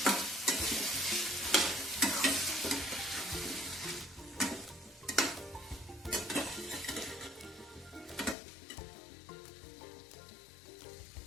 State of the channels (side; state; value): right; drops out; at 8.3 s